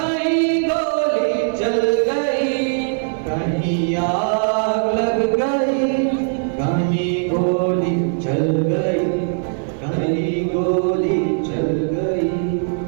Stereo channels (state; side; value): silent; left; digital silence